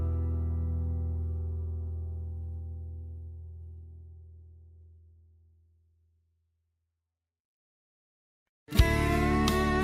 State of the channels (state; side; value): identical; both; correlation 1.00